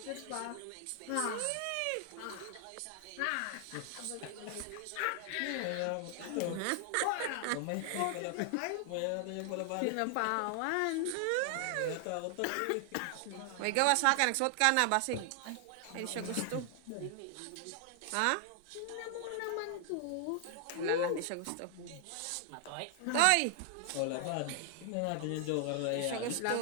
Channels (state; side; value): different; both; correlation 0.00